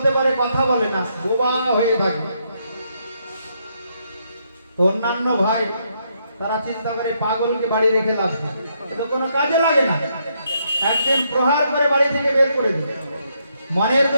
পারে, কথা বলে না, বোবা হয়ে থাকে। তো অন্যান্য ভাই তারা চিন্তা করে পাগলকে বাড়ি রেখে লাভ নেই, এটা কোনো কাজে লাগে না। একদিন প্রহার করে বাড়ি থেকে বের করে দিল। মনের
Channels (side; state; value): both; inverted; correlation -0.76